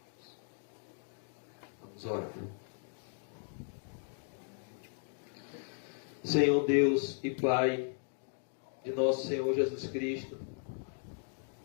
Vamos orar. Senhor Deus e Pai de nosso Senhor Jesus Cristo,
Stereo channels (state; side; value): silent; right; 53 dB below the other